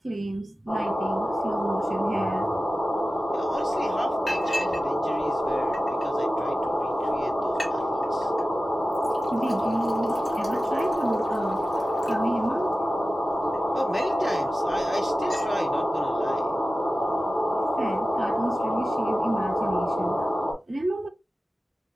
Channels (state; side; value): normal; both; correlation 0.94